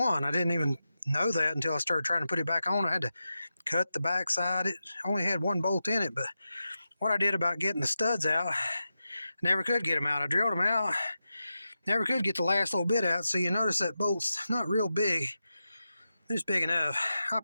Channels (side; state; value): both; inverted; correlation -0.91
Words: I didn't even know that until I started trying to put it back on. I had to cut the backside. It only had one bolt in it, but what I did about getting the studs out, I never could get them out. I drilled them out, never could get the last little bit out. So you notice that bolt's not real big. It's big enough. I